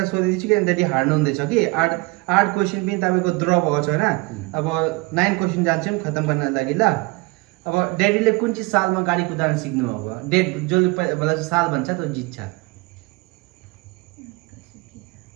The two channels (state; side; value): quieter; left; 25.3 dB